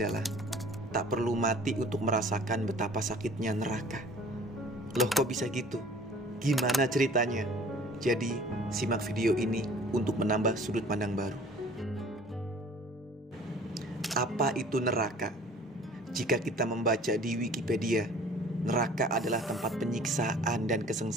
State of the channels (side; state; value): both; normal; correlation 0.49